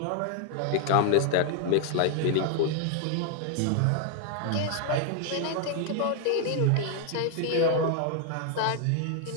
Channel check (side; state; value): both; different; correlation 0.00